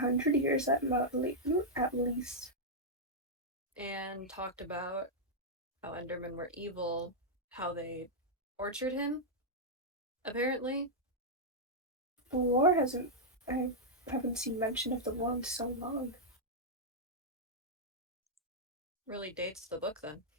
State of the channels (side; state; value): both; normal; correlation -0.06